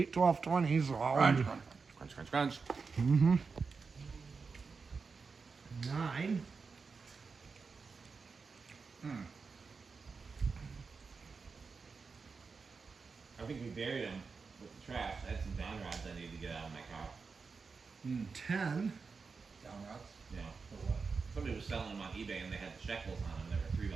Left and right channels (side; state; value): left; quieter; 4.8 dB